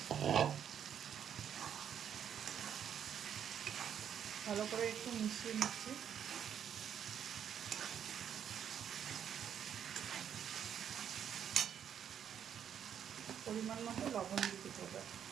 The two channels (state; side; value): quieter; left; 8.8 dB